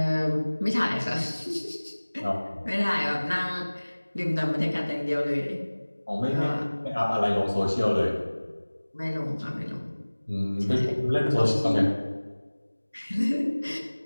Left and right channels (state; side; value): inverted; both; correlation -1.00